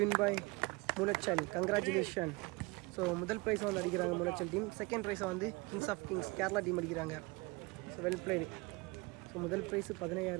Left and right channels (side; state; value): left; quieter; 25.0 dB